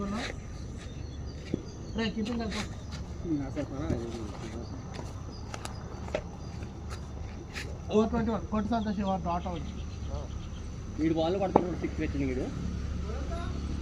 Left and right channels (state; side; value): identical; both; correlation 1.00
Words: రే కీపింగ్ కలిపో. ఓ 21 కొట్టు సంతోష్ డాట్ అవుట్. వీడు బాల్ పడుతున్నాడు 6 వచ్చింది వీడు